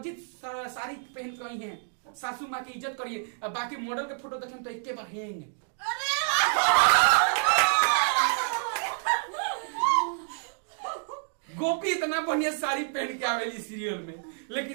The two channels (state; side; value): silent; left; digital silence